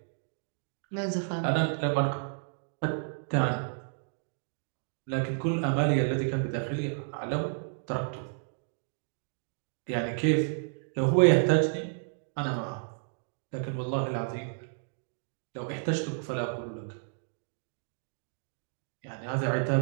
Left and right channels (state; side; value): silent; left; digital silence